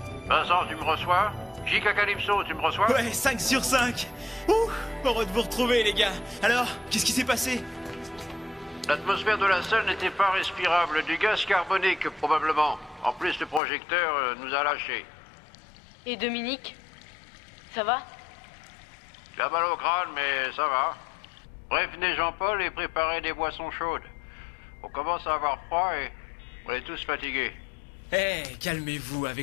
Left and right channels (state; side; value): drops out; right; at 13.6 s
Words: Vincent, tu me reçois? J.K. Calypso, tu me reçois? Ouais, 5 sur 5. Ouh, heureux de vous retrouver, les gars. Alors, qu'est-ce qui s'est passé? L'atmosphère de la salle n'était pas respirable. Du gaz carbonique, probablement. En plus, le projecteur nous a lâchés. Et Dominique? Ça va? Il a mal au crâne, mais ça va. Prévenez Jean-Paul et préparez des boissons chaudes. On commence à avoir froid et on est tous fatigués. Eh, calmez-vous.